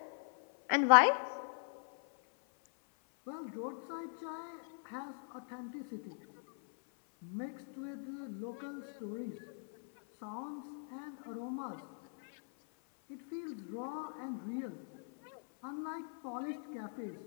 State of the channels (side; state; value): right; silent; 51 dB below the other